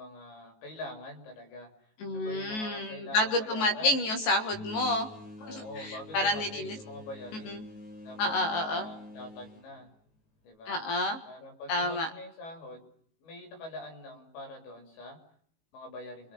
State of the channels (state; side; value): late; right; 19 ms